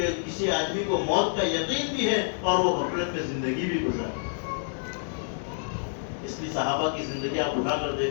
کسی آدمی کو موت کا یقین بھی ہے اور وہ غفلت میں زندگی بھی گزارے۔ اس کی صحابہ کی زندگی آپ اٹھا کر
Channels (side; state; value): right; silent; 59 dB below the other